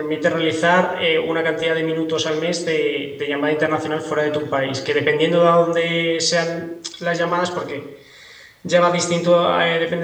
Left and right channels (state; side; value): identical; both; correlation 1.00